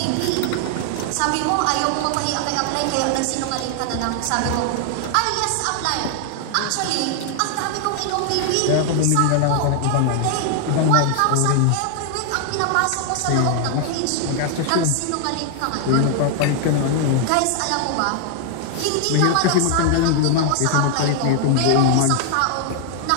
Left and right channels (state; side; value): different; both; correlation 0.00